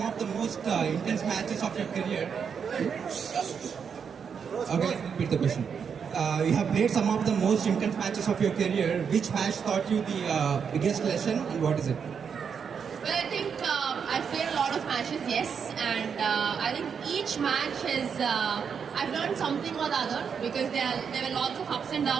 of the most intense matches of your career. Okay, let me repeat the question. You have played some of the most intense matches of your career. Which match taught you the biggest lesson, and what is it? Well, I think I've played a lot of matches, yes, and I think each match has, I've learned something or the other, because there were lots of ups and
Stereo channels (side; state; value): left; quieter; 6.7 dB